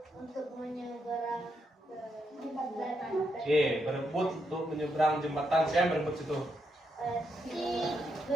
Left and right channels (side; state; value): both; normal; correlation 0.81